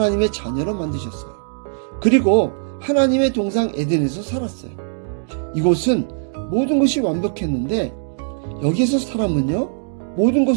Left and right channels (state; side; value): silent; left; digital silence